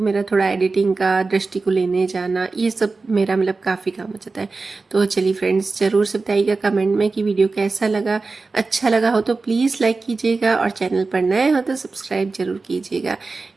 मेरा थोड़ा एडिटिंग का, दृष्टि को लेने जाना, ये सब मेरा मतलब काफ़ी काम हो जाता है। तो चलिए फ्रेंड्स ज़रूर से बताइएगा कमेंट में कि वीडियो कैसा लगा। अच्छा लगा हो तो प्लीज़ लाइक कीजिएगा, और चैनल पर नए हो तो सब्सक्राइब जरूर कीजिएगा।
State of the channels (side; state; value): left; quieter; 3.9 dB